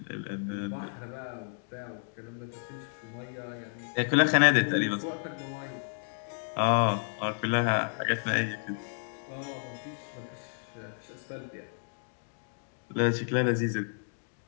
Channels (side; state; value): right; silent; digital silence